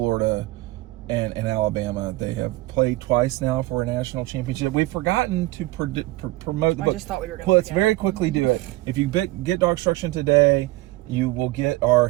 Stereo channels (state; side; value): quieter; left; 19.1 dB